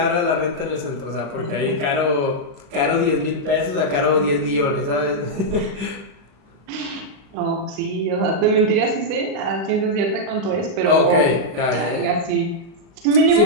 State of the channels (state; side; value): late; left; 35 ms